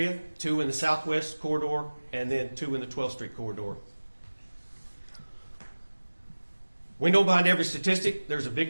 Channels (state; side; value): inverted; both; correlation -1.00